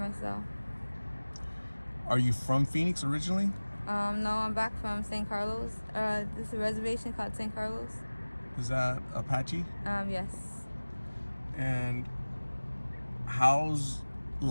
Are you from Phoenix originally? No, I'm back from St. Carlos. This is a reservation called St. Carlos. Is that Apache? Yes. And how's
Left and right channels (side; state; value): both; inverted; correlation -1.00